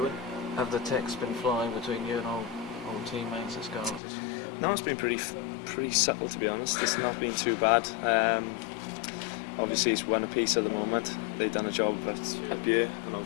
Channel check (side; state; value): right; drops out; at 4.0 s